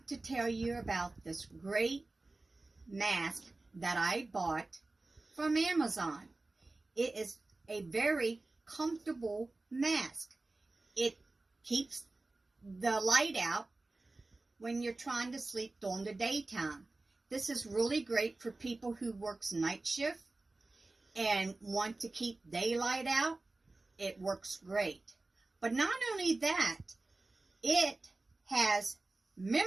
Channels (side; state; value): left; quieter; 3.2 dB